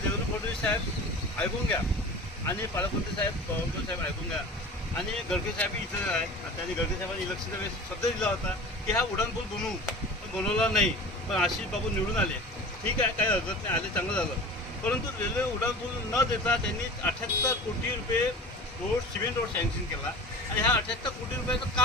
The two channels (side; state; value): both; normal; correlation 0.37